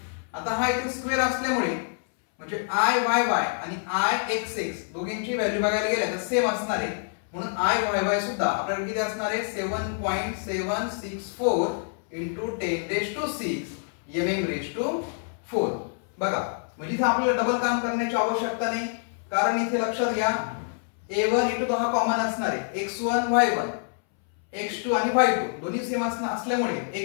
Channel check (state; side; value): silent; right; 60 dB below the other